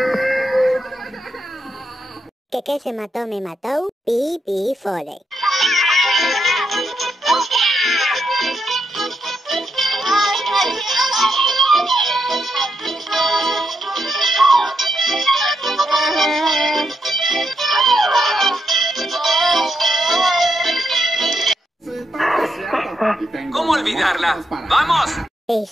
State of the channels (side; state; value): both; normal; correlation 0.81